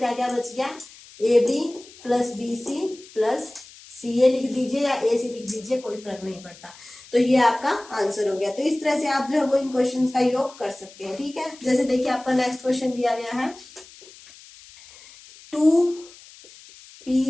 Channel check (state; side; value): noise; left; hiss, 21 dB below the sound